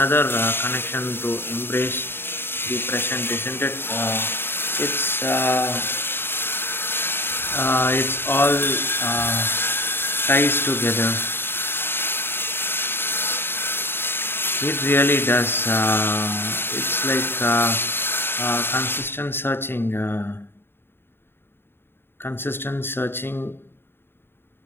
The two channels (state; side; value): late; right; 0.11 ms